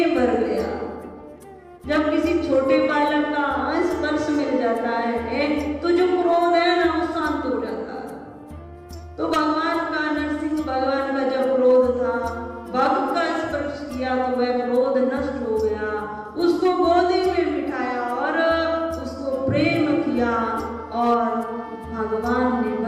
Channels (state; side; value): identical; both; correlation 1.00